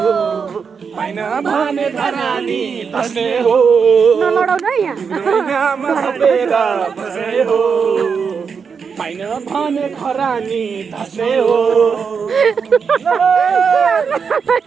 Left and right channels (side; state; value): left; quieter; 6.0 dB